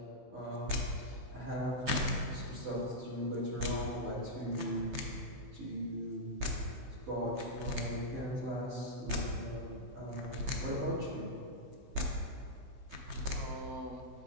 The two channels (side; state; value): left; late; 15 ms